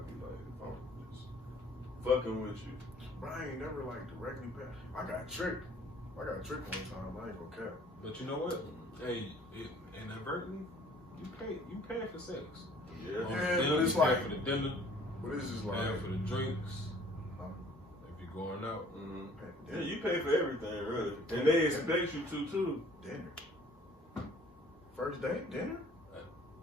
be like, I'm just fucking with you. But I ain't never like directly pay. I got tricked one time. I ain't gonna cap. But you know what? Hey, inadvertently, you pay for sex. Yeah, but it's like for the dinner. But it's just pay like for the drinks. If you're going out, yeah, you pay for everything, really, and they expect you to too. Dinner. First date, dinner.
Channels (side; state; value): both; normal; correlation 0.55